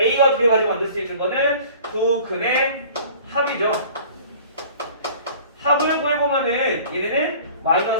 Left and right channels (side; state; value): both; inverted; correlation -0.47